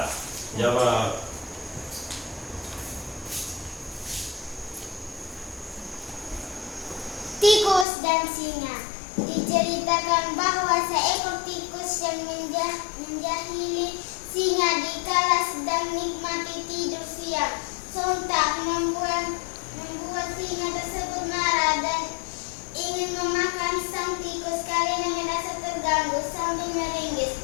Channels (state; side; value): drops out; right; at 7.9 s